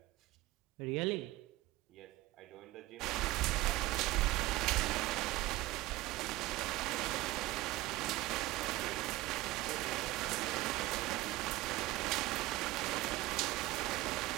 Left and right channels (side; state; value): left; quieter; 18.6 dB